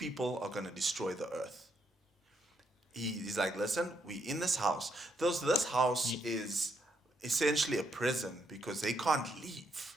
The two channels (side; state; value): both; normal; correlation 0.77